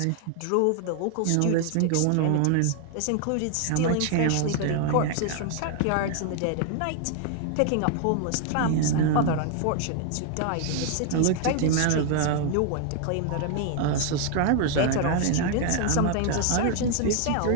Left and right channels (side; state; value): both; different; correlation 0.00